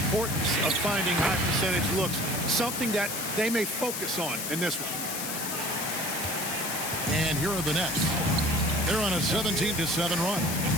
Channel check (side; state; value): left; noise; hiss, 4 dB below the sound